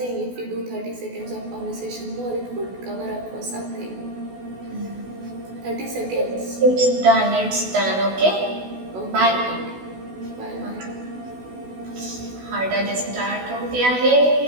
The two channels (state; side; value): late; left; 16 ms